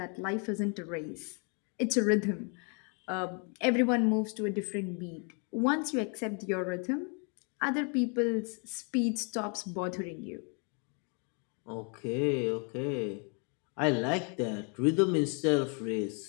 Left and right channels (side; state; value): right; quieter; 37.9 dB